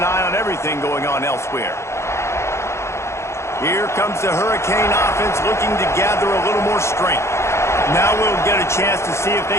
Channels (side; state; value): right; late; 0.13 ms